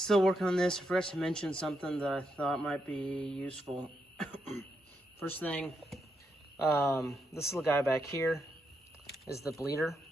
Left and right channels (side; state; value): both; normal; correlation 0.81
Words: working on this. I forgot to mention something that I thought might be useful. First thing, this little guy back here is the bleeder